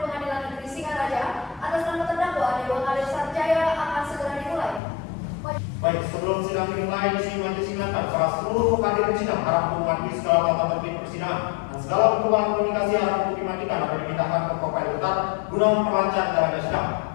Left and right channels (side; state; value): right; drops out; at 4.8 s